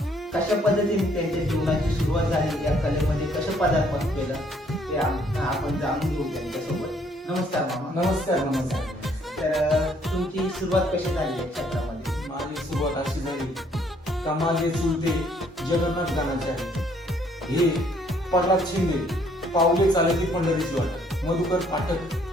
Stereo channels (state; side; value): normal; both; correlation 0.65